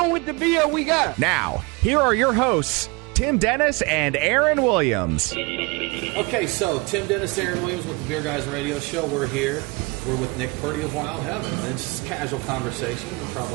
with the beer we got? Now, here are your hosts, Tim Dennis and Aaron Williams. Okay, so Tim Dennis, Aaron Williams with the Beer Guys Radio Show. We're here. We're with Nick Purdy of Wild Heaven. It's just casual conversation. We'll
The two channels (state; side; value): quieter; left; 26.7 dB